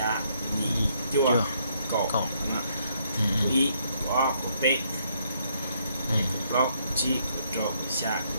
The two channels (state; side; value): inverted; both; correlation -0.71